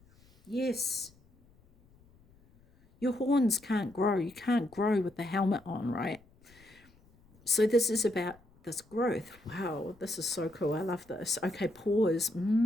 Yes. Your horns can't grow. You can't grow with the helmet on, right? So this is about this growth. Wow, this is so cool. I love this. Okay, pause.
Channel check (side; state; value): left; noise; rumble, 29 dB below the sound